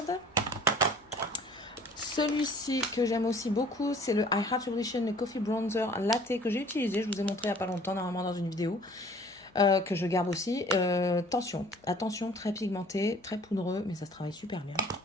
Celui-ci que j'aime aussi beaucoup, c'est le I Heart Revolution, le Coffee Bronzer Latte que j'ai utilisé. Je vous ai montré il n'y a pas longtemps, normalement dans une vidéo. Que je garde aussi. Attention, très pigmenté, très poudreux, mais ça se travaille super bien.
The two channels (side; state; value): left; noise; hum, 29 dB below the sound